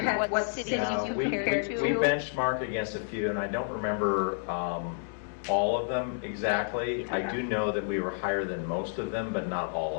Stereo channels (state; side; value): silent; right; digital silence